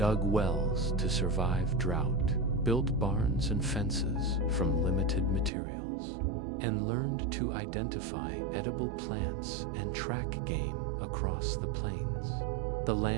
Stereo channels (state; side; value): drops out; left; at 5.5 s